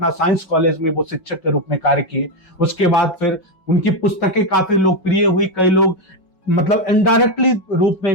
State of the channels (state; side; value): late; right; 5.5 ms